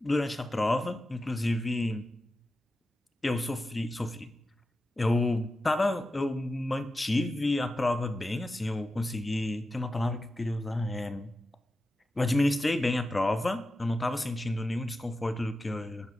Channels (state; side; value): normal; both; correlation 0.92